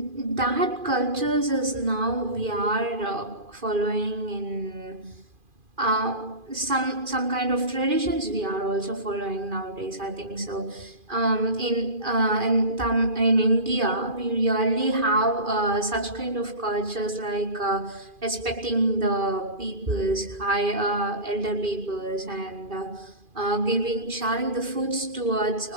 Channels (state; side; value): late; left; 2.4 ms